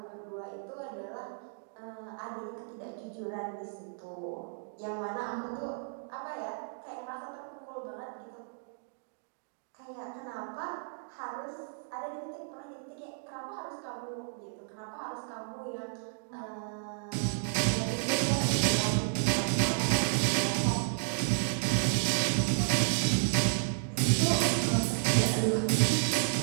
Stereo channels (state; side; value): silent; left; digital silence